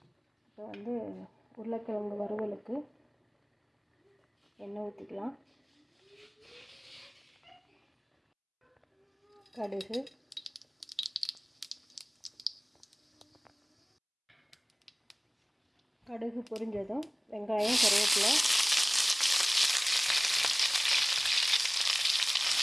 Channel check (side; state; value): both; identical; correlation 1.00